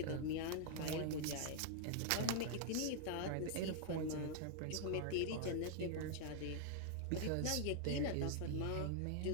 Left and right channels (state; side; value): different; both; correlation -0.01